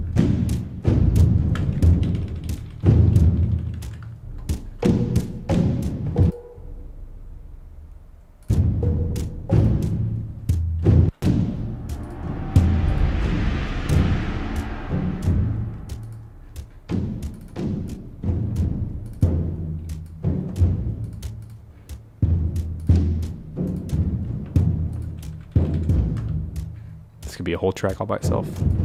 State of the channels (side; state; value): both; identical; correlation 1.00